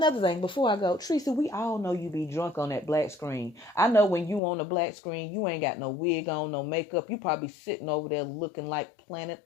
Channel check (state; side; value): drops out; right; at 4.4 s